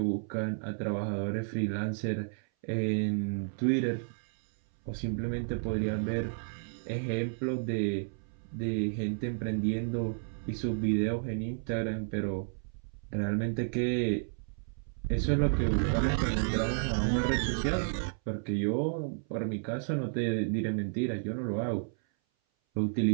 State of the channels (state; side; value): silent; left; 57 dB below the other